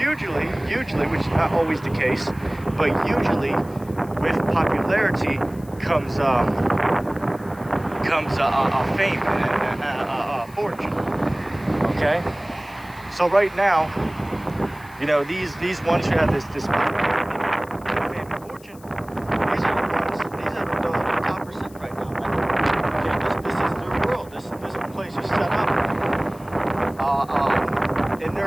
which is not always the case, but usually with popularity comes fame and fortune. Okay, so right now, these ones who have this popularity, fame and fortune, these are the top percent right now, man. Okay, this is their world. This place is set up in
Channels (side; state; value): left; noise; hiss, 24 dB below the sound